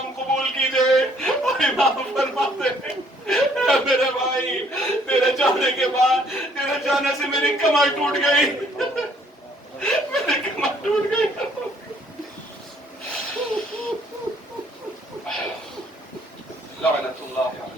قبول کیجئے اور امام فرما دے اے میرے بھائی تیرے جانے کے بعد تیرے جانے سے میری کمر ٹوٹ گئی میری کمر ٹوٹ گئی لعنت اللہ علی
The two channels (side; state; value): both; normal; correlation 0.63